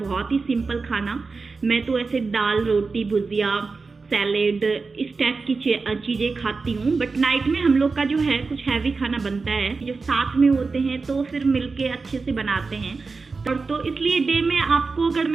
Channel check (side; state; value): left; quieter; 4.3 dB